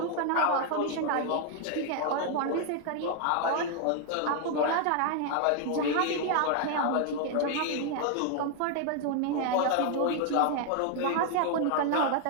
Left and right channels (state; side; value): different; both; correlation 0.00